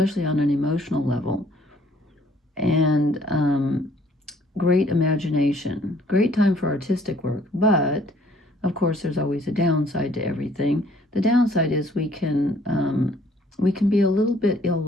on an emotional level, and great imagination, great time for artistic work. But of course, there's always a downside to everything. The downside is we can be a little bit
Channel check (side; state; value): both; normal; correlation 0.60